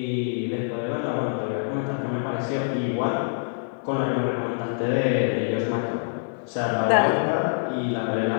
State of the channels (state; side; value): silent; right; 61 dB below the other